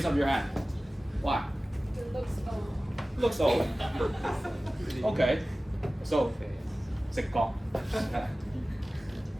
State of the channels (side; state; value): both; normal; correlation 0.97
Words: up your hand. Why? It looks old. Looks old. Okay. So 直覺.